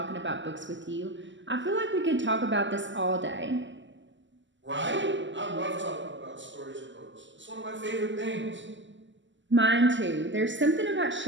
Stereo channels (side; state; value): left; late; 0.54 ms